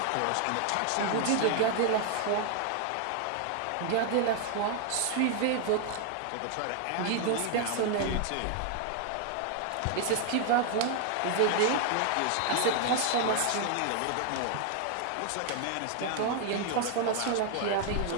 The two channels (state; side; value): different; both; correlation 0.00